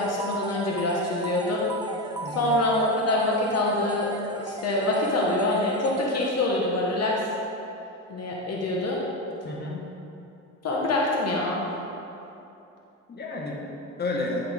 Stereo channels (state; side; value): normal; both; correlation 0.15